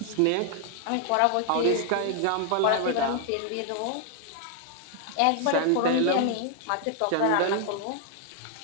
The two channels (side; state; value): both; different; correlation 0.00